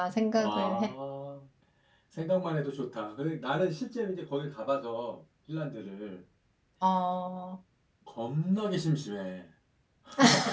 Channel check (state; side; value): identical; both; correlation 1.00